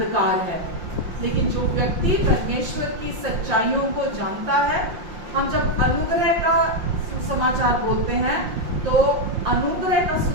है। लेकिन जो व्यक्ति परमेश्वर की सच्चाइयों को जानता है, हम जब अनुग्रह का सुसमाचार बोलते हैं, तो अनुग्रह का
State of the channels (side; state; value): left; late; 5.7 ms